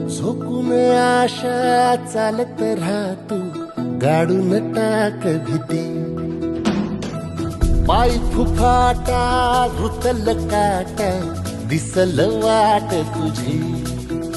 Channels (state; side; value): identical; both; correlation 1.00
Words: झोकून आशा चालत राहतू गाडून टाक भीती पाय फुफाटा रुतल काटा दिसल वाट तुझी